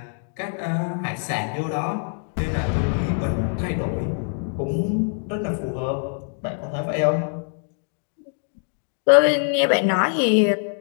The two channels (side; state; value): right; silent; 61 dB below the other